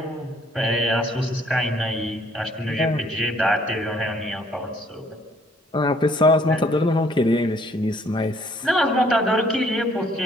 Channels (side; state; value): both; normal; correlation 0.62